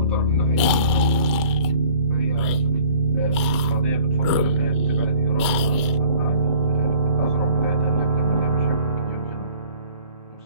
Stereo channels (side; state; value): both; inverted; correlation -0.51